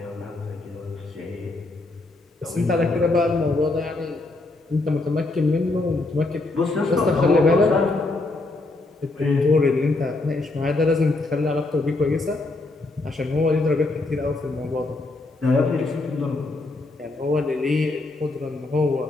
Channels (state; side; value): quieter; right; 3.1 dB